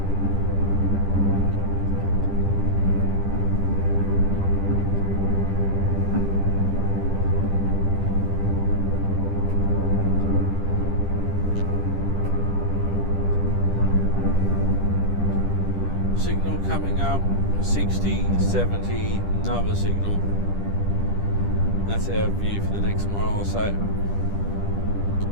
Signal coming up, 60, 70, another signal. That's our view for the next mile or so.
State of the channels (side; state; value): right; late; 10 ms